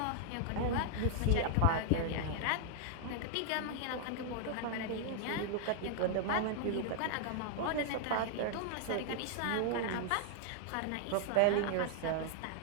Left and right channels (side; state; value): both; different; correlation 0.00